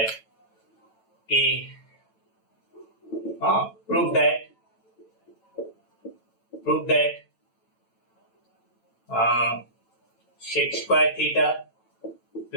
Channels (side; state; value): right; late; 9.0 ms